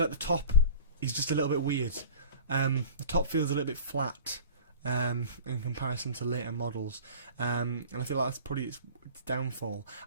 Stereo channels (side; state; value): both; inverted; correlation -0.40